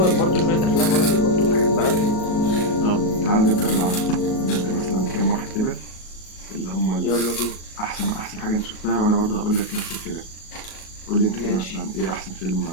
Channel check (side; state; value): right; late; 37 ms